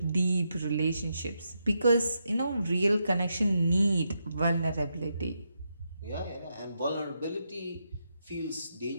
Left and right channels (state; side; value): inverted; both; correlation -0.83